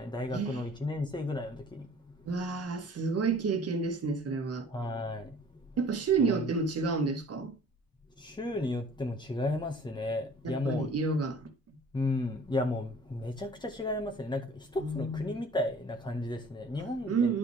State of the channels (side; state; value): both; normal; correlation 0.50